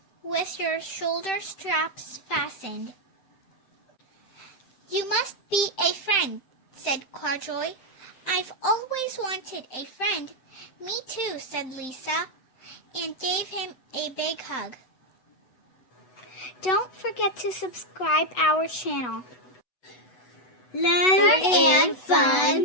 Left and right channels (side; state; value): right; late; 8.0 ms